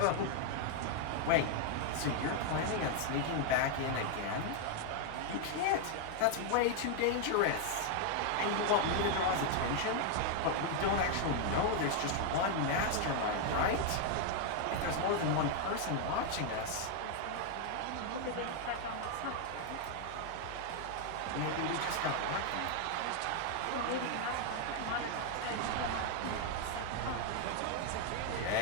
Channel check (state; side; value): different; both; correlation 0.00